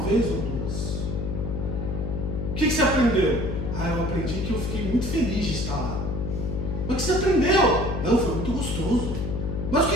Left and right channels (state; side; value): noise; left; hum, 3 dB below the sound